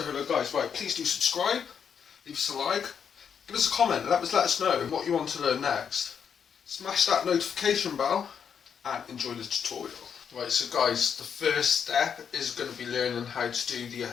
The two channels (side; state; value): right; quieter; 7.4 dB